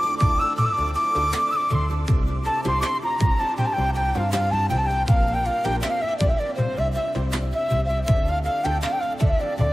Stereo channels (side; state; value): both; normal; correlation 0.96